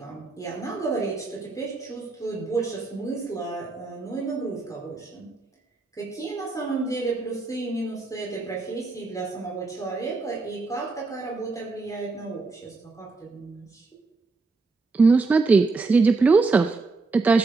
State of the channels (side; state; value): left; quieter; 3.8 dB